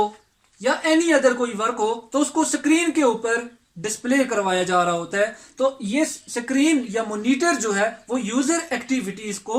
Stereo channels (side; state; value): both; identical; correlation 1.00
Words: या एनी अदर कोई वर्क हो, तो उसको स्क्रीन के ऊपर डिस्प्ले करवाया जा रहा होता है। तो ये स्क्रीन या मॉनिटर जो है वो यूजर एक्टिविटीज